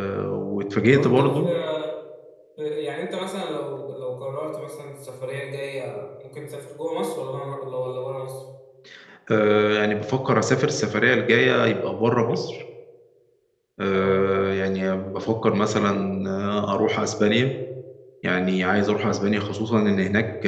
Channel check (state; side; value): identical; both; correlation 1.00